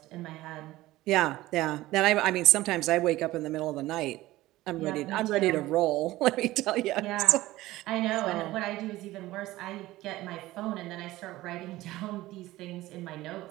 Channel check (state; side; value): quieter; left; 17.2 dB